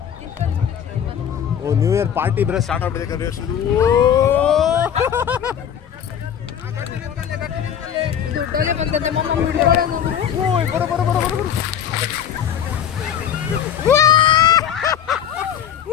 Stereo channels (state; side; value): quieter; right; 8.9 dB